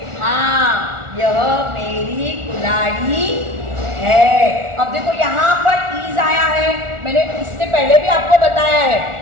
हाँ, यह मेरी कुल्हाड़ी है। अब देखो यहाँ पर इज आया है, मैंने इससे पहले भी आपको बताया है,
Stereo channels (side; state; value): left; late; 1.4 ms